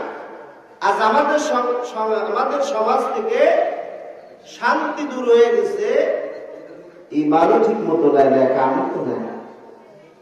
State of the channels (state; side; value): identical; both; correlation 1.00